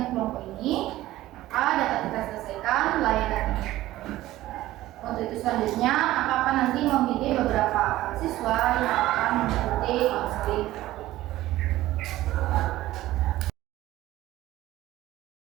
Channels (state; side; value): quieter; left; 15.8 dB